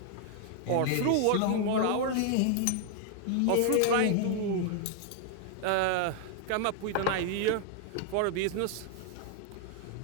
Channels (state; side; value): different; both; correlation 0.00